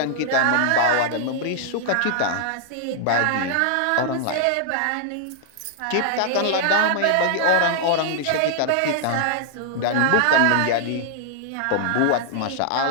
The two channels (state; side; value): different; both; correlation -0.01